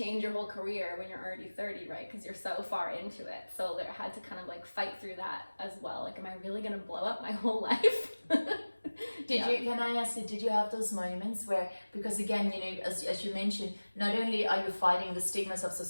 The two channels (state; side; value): inverted; both; correlation -1.00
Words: your whole career when you're already 30, right? Because you're so far into it. So there had to kind of like fight through that as well. Like, am I really gonna blow up my whole life? Can I ask you, did you have those moments where, because again, as you mentioned, not only are you fighting the stigmas of